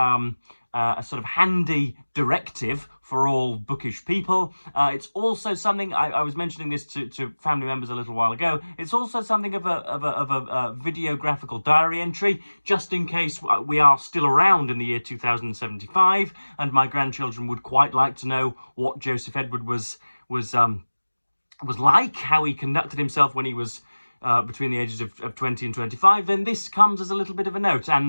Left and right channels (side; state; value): both; inverted; correlation -1.00